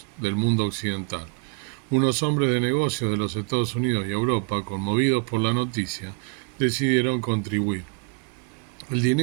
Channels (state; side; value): quieter; left; 35.2 dB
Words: del mundo occidental. Unos hombres de negocios de los Estados Unidos y Europa, conmovidos por la noticia, decidieron contribuir. El